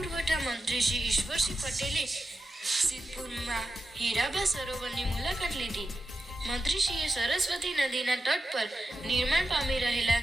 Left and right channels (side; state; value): both; normal; correlation 0.90